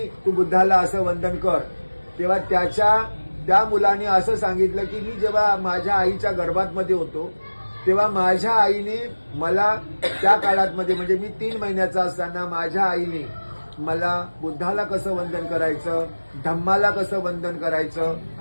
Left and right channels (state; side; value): inverted; both; correlation -1.00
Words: तू बुद्धाला असं वंदन कर. तेव्हा त्या मुलाने असं सांगितलं की मी जेव्हा माझ्या आईच्या गर्भातमध्ये होतो तेव्हा माझ्या आईने मला त्या काळातमध्ये म्हणजे मी 3 महिन्याचा असताना माझ्या आईने मला बुद्धाला कसं वंदन करायचं, धम्माला कसं वंदन करायचं